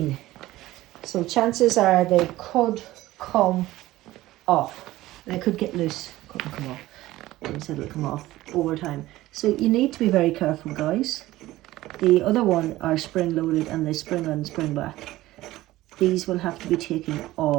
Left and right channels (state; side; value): quieter; left; 16.7 dB